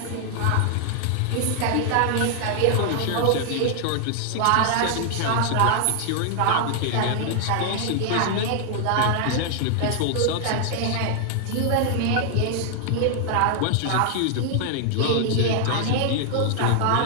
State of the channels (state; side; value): different; both; correlation 0.00